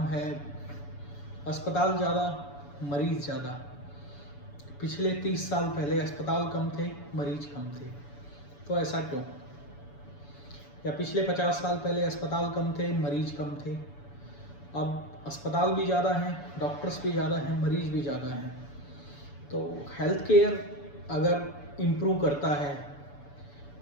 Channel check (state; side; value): late; right; 7.0 ms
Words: है अस्पताल ज़्यादा, मरीज ज़्यादा। पिछले 30 साल पहले अस्पताल कम थे, मरीज कम थे, तो ऐसा क्यों? या पिछले 50 साल पहले अस्पताल कम थे, मरीज कम थे, अब अस्पताल भी ज़्यादा हैं, डॉक्टर्स भी ज़्यादा हैं, मरीज भी ज़्यादा हैं। तो हेल्थ केयर अगर इम्प्रूव करता है